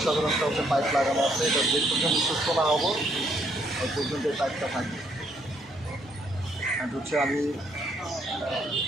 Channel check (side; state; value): both; normal; correlation 0.71